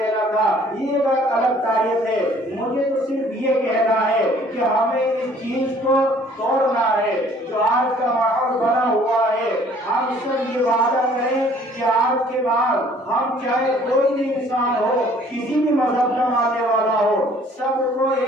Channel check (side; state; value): both; normal; correlation 0.56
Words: تھا۔ یہ ایک الگ تاریخ ہے۔ مجھے تو صرف یہ کہنا ہے کہ ہمیں اس چیز کو توڑنا ہے جو آج کا ماحول بنا ہوا ہے۔ ہم سب یہ وعدہ کریں کہ آج کے بعد ہم چاہے کوئی بھی انسان ہو، کسی بھی مذہب کا ماننے والا ہو، سب کو